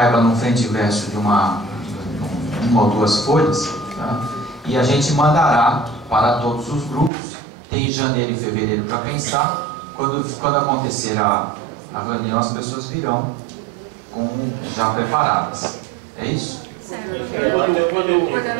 no frente e verso de uma ou duas folhas. Tá? E a gente mandará para todos os grupos. Tem janeiro e fevereiro para pensar. Quando acontecer a reunião, as pessoas virão já preparadas. É isso? O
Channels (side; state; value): left; drops out; at 7.1 s